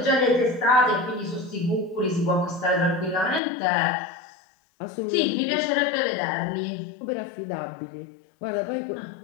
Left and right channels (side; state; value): right; drops out; at 3.4 s